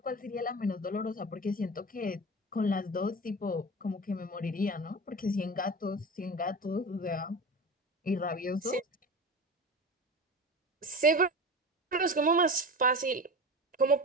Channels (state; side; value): normal; both; correlation 0.30